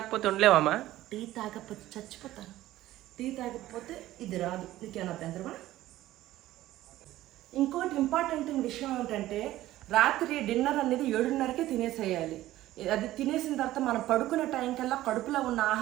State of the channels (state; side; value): quieter; left; 15.2 dB